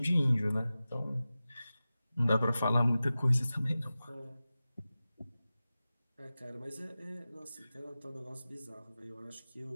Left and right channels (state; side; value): inverted; both; correlation -0.95